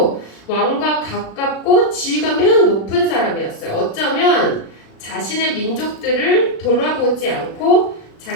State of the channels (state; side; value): late; right; 36 ms